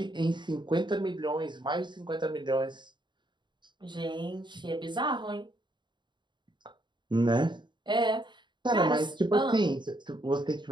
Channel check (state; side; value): late; left; 0.22 ms